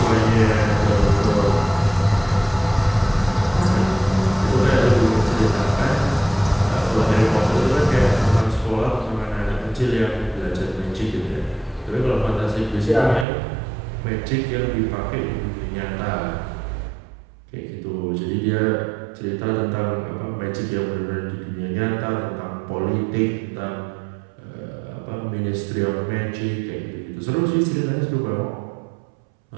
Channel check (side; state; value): left; drops out; at 13.2 s